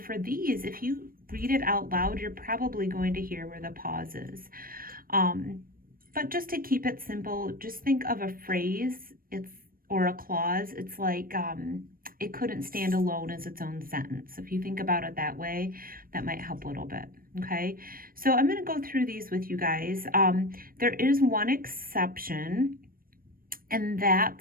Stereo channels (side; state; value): left; late; 0.41 ms